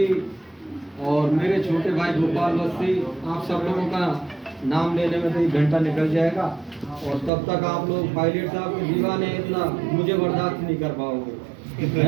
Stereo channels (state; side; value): drops out; left; at 7.3 s